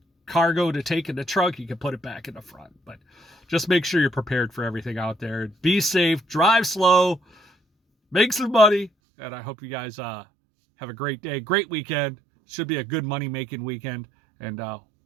cargo to take in the trunk, you can put it back in the front. But just make sure you're prepared for everything out there. Be safe, drive slow, make some money, and I hope you guys have a great day, great weekend. Should be a good money-making weekend, and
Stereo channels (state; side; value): drops out; left; at 8.9 s